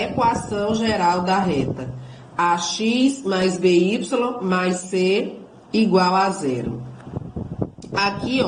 geral da reta. AX mais BY mais C igual a zero. Aqui,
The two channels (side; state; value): both; identical; correlation 1.00